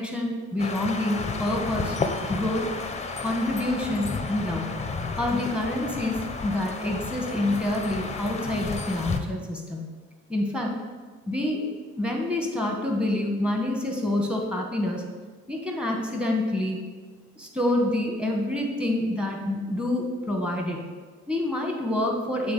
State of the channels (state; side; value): normal; both; correlation 0.66